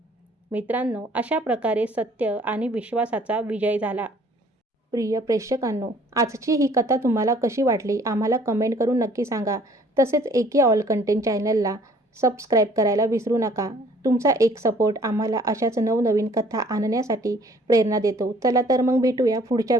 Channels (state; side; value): normal; both; correlation 0.57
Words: मित्रांनो, अशा प्रकारे सत्य आणि विश्वासाचा विजय झाला. प्रिय प्रेक्षकांनो, आजची ही कथा तुम्हाला कशी वाटली आम्हाला कमेंट करून नक्की सांगा. तसेच एके ऑल कंटेंट चॅनलला सबस्क्राईब करायला विसरू नका. तुमचा एक सपोर्ट आम्हाला अशाच नवनवीन कथा आणण्यासाठी प्रेरणा देतो. चला तर मग भेटूया पुढच्या